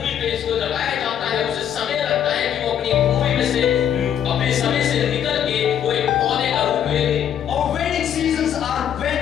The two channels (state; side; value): quieter; right; 9.5 dB